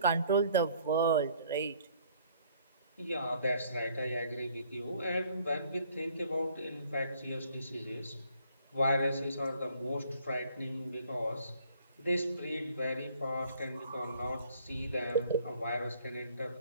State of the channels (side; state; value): both; inverted; correlation -0.61